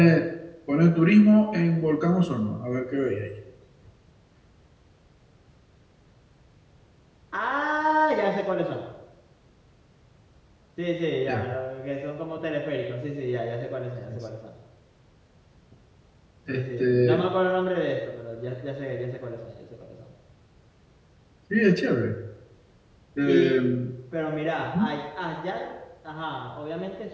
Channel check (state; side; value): identical; both; correlation 1.00